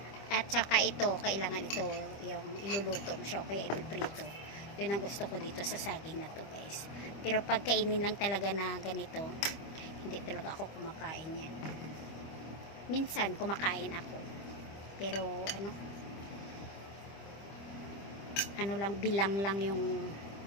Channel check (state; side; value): late; right; 25 ms